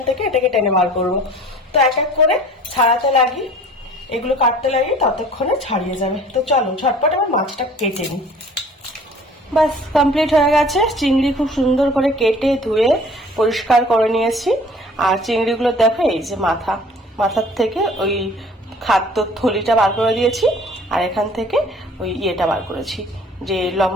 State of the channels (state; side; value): normal; both; correlation 0.49